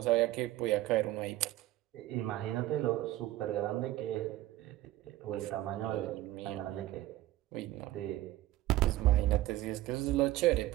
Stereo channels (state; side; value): quieter; left; 15.5 dB